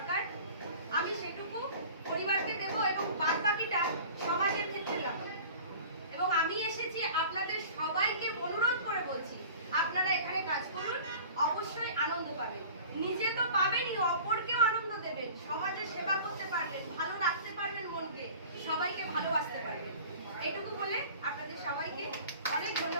আমি সেটুকু পরিবারকে দেব এবং বাদ বাকিটা সমাজের ক্ষেত্রে লাগাবো। এবং আমি এসেছি আপনাদের সবাইকে অনুরোধ করে বলছি, আপনারা এখানে কাজ করুন, অবশ্যই আনন্দ পাবেন। নিজে তো পাবেনই, অপরকেও আনন্দ দেবেন, সমাজের সেবা করতে পারবেন, ভালো রাখতে পারবেন মনকে, সবাইকে ভালোবাসতে পারবেন। এইটুকু বলে আপনাদের সবাইকে অনেক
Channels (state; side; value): inverted; both; correlation -0.42